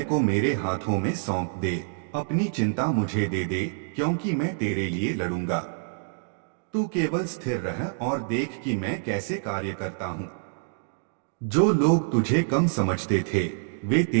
को मेरे हाथों में सौंप दे, अपनी चिंता मुझे दे दे, क्योंकि मैं तेरे लिए लड़ूंगा। तू केवल स्थिर रह और देख कि मैं कैसे कार्य करता हूं। जो लोग तुझे कम समझते थे, वे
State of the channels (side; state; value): left; silent; digital silence